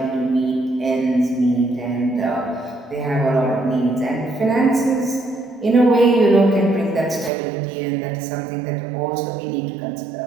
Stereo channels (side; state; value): left; drops out; at 7.3 s